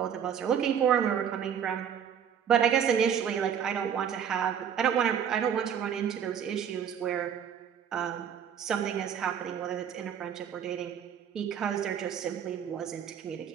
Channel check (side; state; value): left; quieter; 8.3 dB